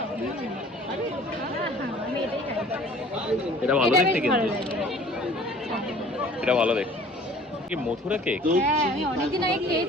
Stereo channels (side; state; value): both; normal; correlation 0.50